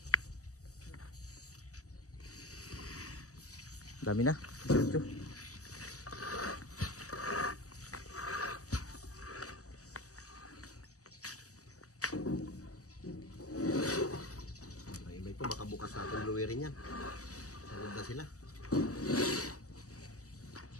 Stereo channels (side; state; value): right; late; 0.66 ms